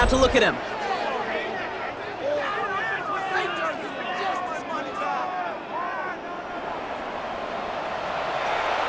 to look at him.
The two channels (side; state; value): both; identical; correlation 1.00